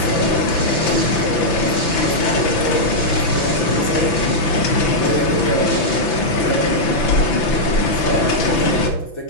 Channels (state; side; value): late; right; 6.0 ms